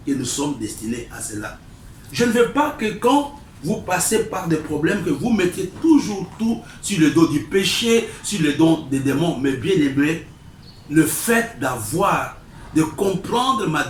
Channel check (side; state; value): both; identical; correlation 1.00